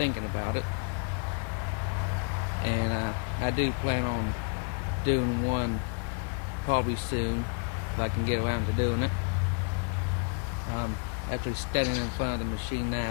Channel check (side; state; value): right; quieter; 37.4 dB